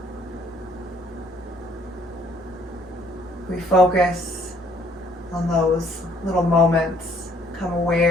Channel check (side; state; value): both; normal; correlation 0.62